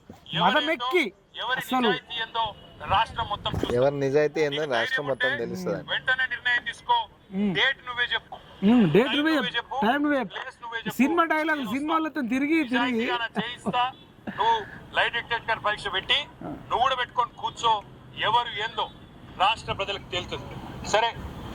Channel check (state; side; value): identical; both; correlation 1.00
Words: మదమెక్కి ఎవరి నిజాయితీ ఏందో రాష్ట్రం మొత్తం తెలుస్తుంది. వెంటనే నిర్ణయం తీసుకో. డేట్ నువ్వే చెప్పు, డేట్ నువ్వే చెప్పు, టైం నువ్వే చెప్పు. సినిమా డైలాగ్ సినిమాలతో తిరిగి చేయిస్తా. నువ్వు లైవ్ డిటెక్టర్ పరీక్ష పెట్టి నువ్వు కూడా పెట్టుకొని కూర్చో. ఎవరు ఏందో రాష్ట్ర ప్రజలకు తేలుతుంది. సరే,